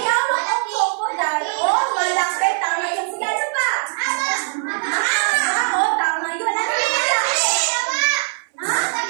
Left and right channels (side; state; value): left; silent; 62 dB below the other